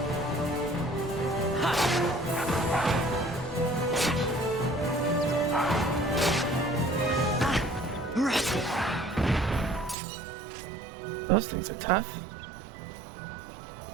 Those things are tough.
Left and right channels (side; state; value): left; drops out; at 10.0 s